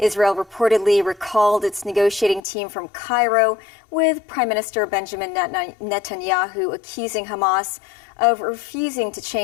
reportedly recalled its negotiating team from Cairo, with Prime Minister Benjamin Netanyahu accusing Hamas of refusing to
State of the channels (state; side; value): drops out; right; at 2.4 s